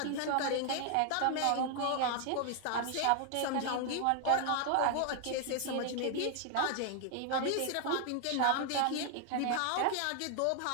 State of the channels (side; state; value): both; different; correlation 0.00